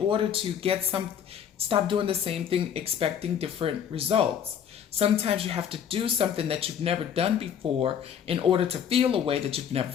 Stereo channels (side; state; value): right; quieter; 8.5 dB